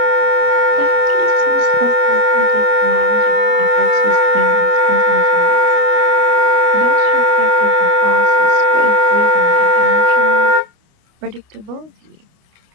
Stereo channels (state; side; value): late; left; 28 ms